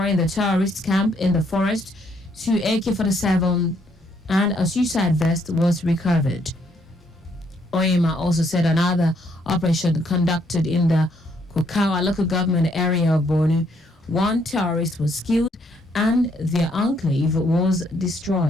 the terrorist camp in the forest, 2 AK-47 and a suicide vest was recovered. Oyema also said another operation conducted in the Kukawa local government area of Borno, 1 terrorist was killed and their enclave was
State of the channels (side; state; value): both; normal; correlation 0.70